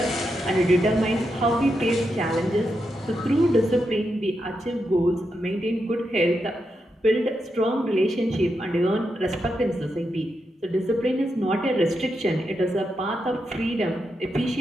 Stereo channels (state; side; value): normal; both; correlation 0.85